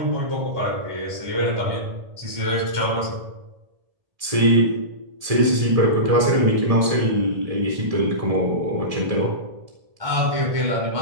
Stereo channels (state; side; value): late; left; 1.7 ms